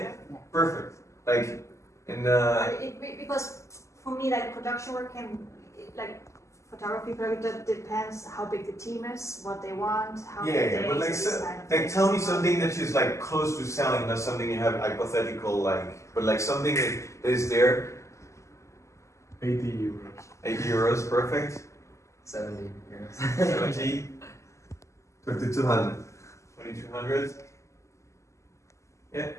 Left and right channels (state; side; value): late; right; 0.14 ms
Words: perfect. Like in Because for me, like production work can, like photography project, that depends how big the team is, what they want, how many days, but like, these kind of like things. tell me something that is like close to selling, not something you have hypothetical like, but like something that is there. 80 euros. 80 euros, perfect. 70 euros. 70. 2,200. 2,200. Yeah.